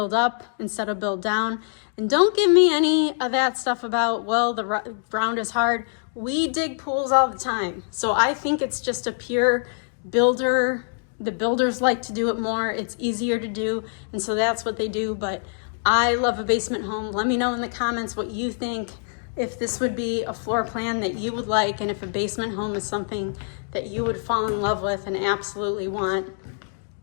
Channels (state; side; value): silent; right; digital silence